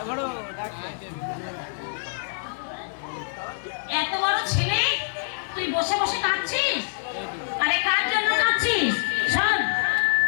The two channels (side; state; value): right; silent; digital silence